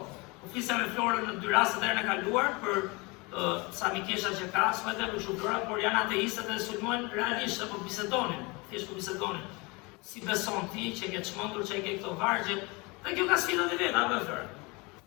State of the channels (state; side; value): quieter; right; 26.7 dB